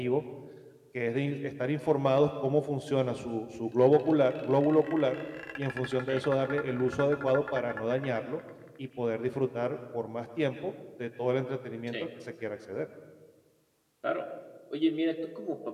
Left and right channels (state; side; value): identical; both; correlation 1.00